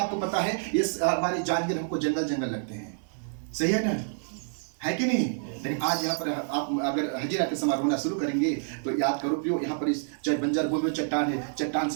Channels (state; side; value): silent; left; 59 dB below the other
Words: पता है इस हमारी जानवर हमको जंगल लगते हैं, सही है ना, है कि नहीं? लेकिन आज यहाँ पर आप अगर हजीरा के समय रोना शुरू करेंगे तो याद करो प्रियो, यहाँ पर इस चाहे बंजर भूमि में चट्टान है, चट्टान